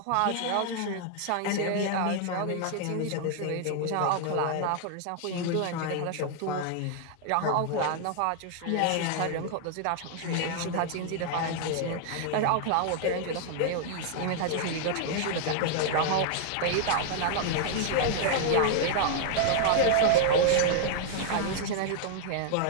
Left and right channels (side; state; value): both; different; correlation 0.00